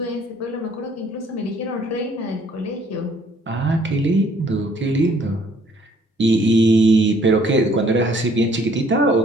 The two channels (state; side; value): normal; both; correlation 0.61